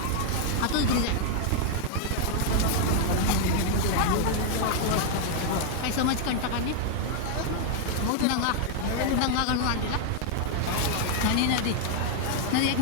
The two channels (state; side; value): different; both; correlation 0.00